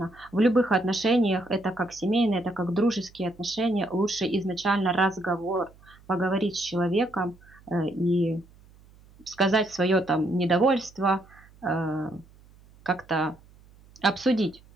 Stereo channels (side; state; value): right; noise; hum, 26 dB below the sound